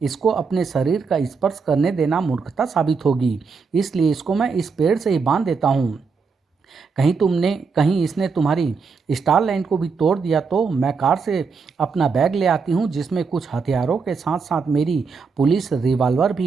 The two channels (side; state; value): left; quieter; 5.1 dB